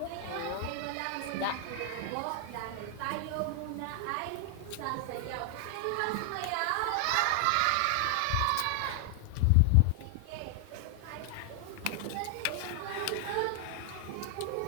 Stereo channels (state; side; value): different; both; correlation 0.00